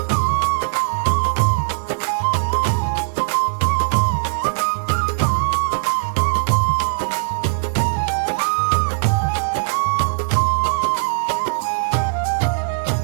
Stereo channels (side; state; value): left; silent; 58 dB below the other